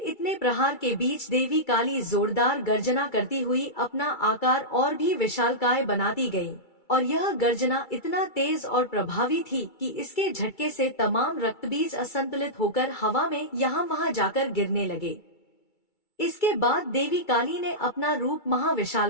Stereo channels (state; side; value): late; right; 2.3 ms